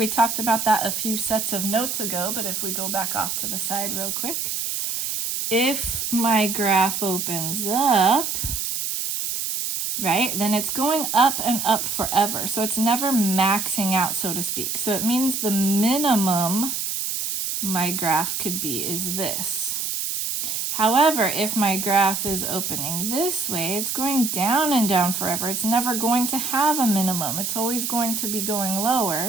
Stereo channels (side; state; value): right; noise; hiss, 2 dB below the sound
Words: talked about that a few sets of notes ago, but if we go back off to the side real quick, if my graph opens up, right, then it's going up and up forever. So it's never maxing out, so to speak. So it means the minimum my graph could be is this. However, if my graph is opening this way, it's going down and down forever. It's never going to have a minimum. It's always going to be going